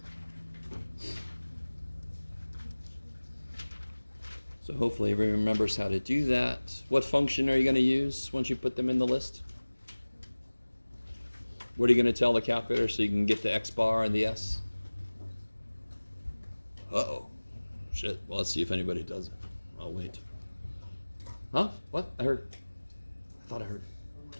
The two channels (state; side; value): inverted; both; correlation -1.00